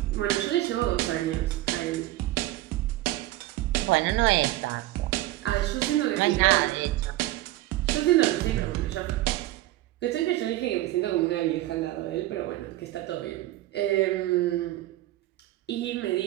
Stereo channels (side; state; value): left; quieter; 16.4 dB